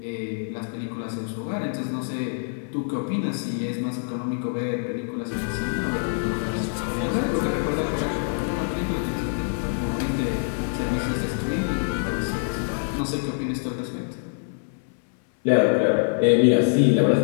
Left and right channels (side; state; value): right; silent; 62 dB below the other